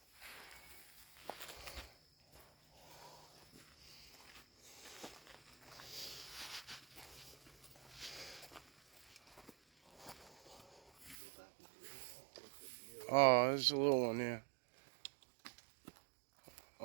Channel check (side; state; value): left; drops out; at 11.2 s